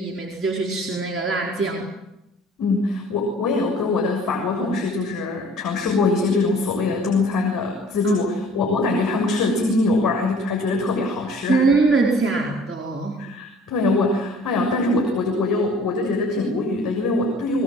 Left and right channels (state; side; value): normal; both; correlation 0.51